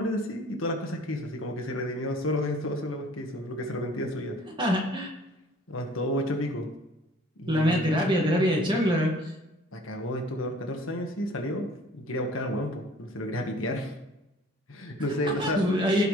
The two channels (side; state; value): both; normal; correlation 0.52